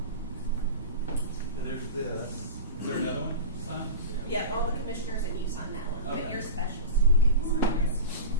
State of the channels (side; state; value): both; inverted; correlation -0.30